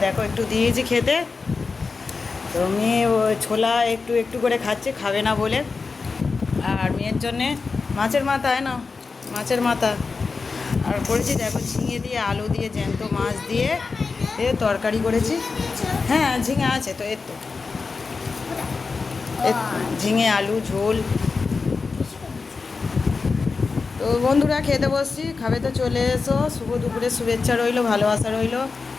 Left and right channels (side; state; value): right; quieter; 4.5 dB